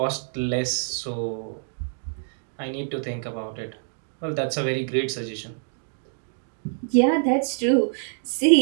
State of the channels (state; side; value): silent; left; digital silence